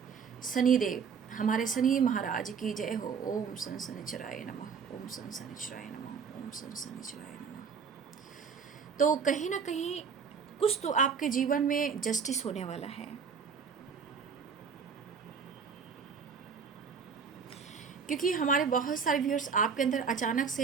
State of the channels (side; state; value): left; quieter; 6.2 dB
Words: शनिदेव, हमारे शनि महाराज की जय हो। ओम सन शनिचराय नमः, ओम सन शनिचराय नमः, ओम सन शनिचराय नमः। तो कहीं ना कहीं कुछ तो आपके जीवन में जस्टिस होने वाला है, क्योंकि हमारे बहुत सारे व्यूअर्स आपके अंदर अचानक